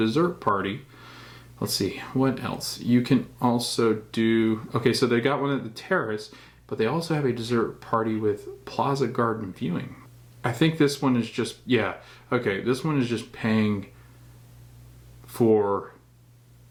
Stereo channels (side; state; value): both; identical; correlation 1.00